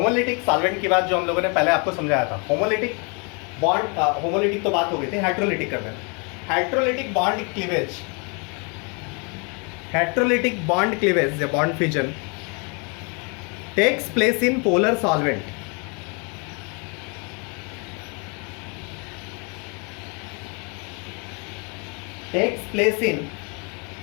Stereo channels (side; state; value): right; quieter; 33.9 dB